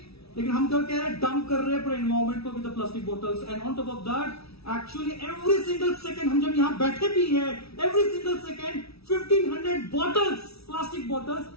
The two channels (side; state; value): right; late; 0.77 ms